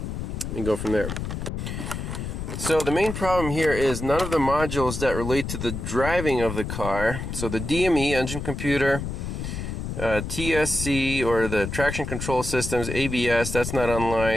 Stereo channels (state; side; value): noise; left; rumble, 5 dB below the sound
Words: and go from there. So the main problem here is none of the modules that relate to the driving of the car, so the DME, engine computer, TSC, or the traction control systems, ABS, that's not